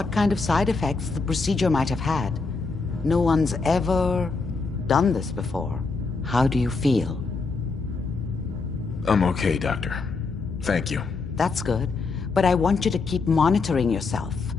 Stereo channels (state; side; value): quieter; right; 4.2 dB